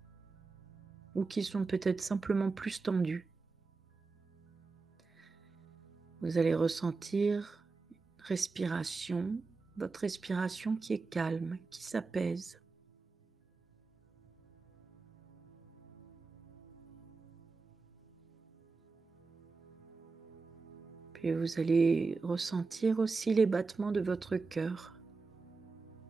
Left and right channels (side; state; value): left; quieter; 4.2 dB